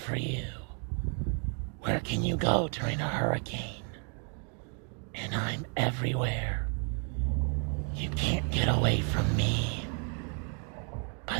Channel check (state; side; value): quieter; left; 39.8 dB